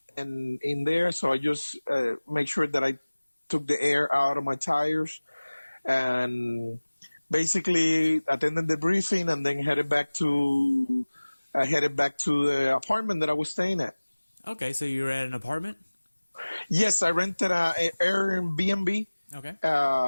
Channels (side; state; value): both; inverted; correlation -1.00